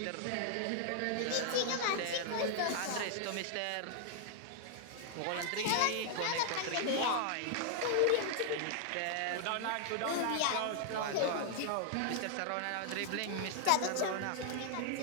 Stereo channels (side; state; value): both; different; correlation 0.00